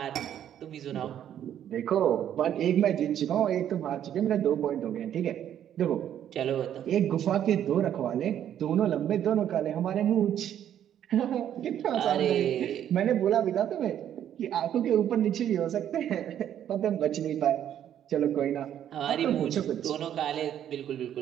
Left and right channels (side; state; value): left; quieter; 10.3 dB